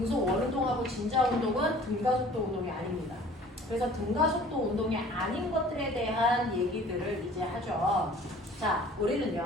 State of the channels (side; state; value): both; normal; correlation 0.50